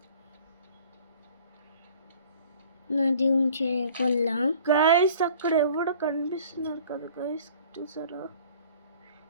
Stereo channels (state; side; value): inverted; both; correlation -0.50